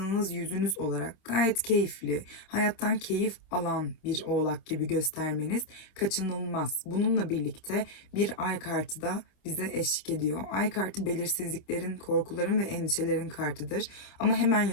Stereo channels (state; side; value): late; right; 27 ms